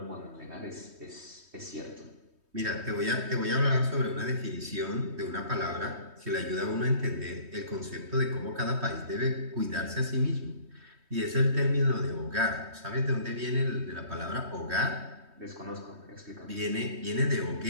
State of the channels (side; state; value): left; late; 3.2 ms